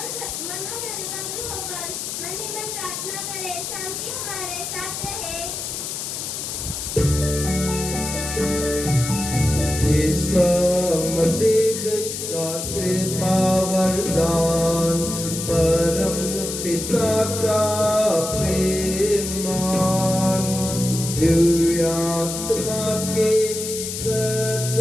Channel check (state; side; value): noise; left; hiss, 5 dB below the sound